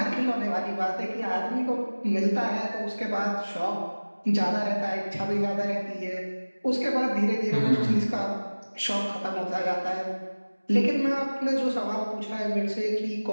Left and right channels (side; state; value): both; inverted; correlation -1.00